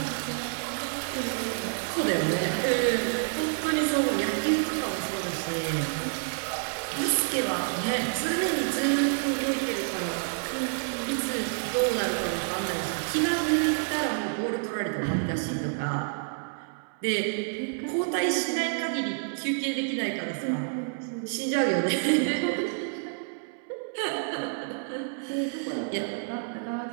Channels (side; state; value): left; silent; 59 dB below the other